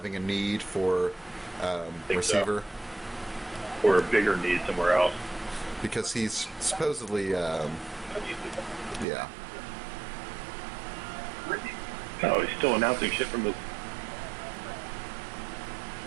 a need for receiver? So. Or a bigger need somewhere else. Because he's supposedly, yeah. Oh, he's still announcing shit from his...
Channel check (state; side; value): drops out; left; at 9.1 s